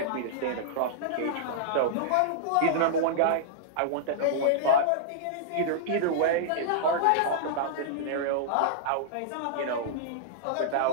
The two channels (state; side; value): different; both; correlation -0.02